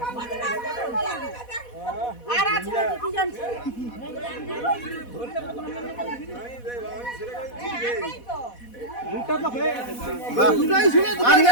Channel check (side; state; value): right; late; 4.1 ms